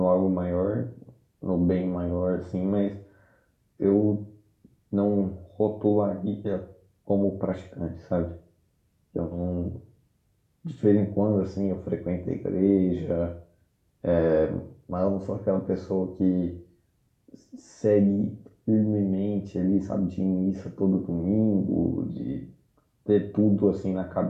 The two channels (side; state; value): both; identical; correlation 1.00